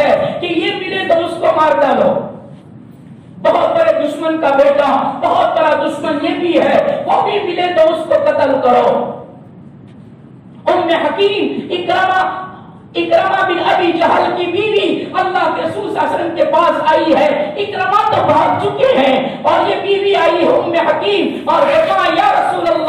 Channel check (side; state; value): both; identical; correlation 1.00